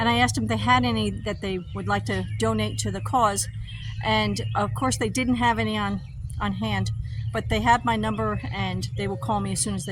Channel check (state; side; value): identical; both; correlation 1.00